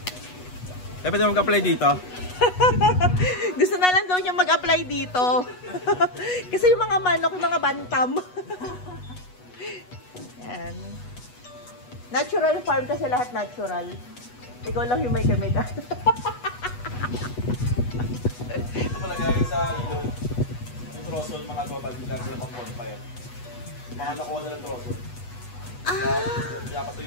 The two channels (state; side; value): late; right; 8.2 ms